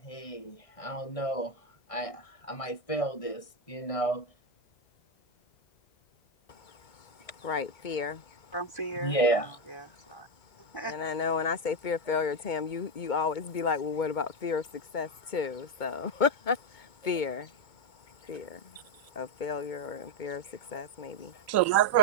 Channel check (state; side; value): late; right; 2.2 ms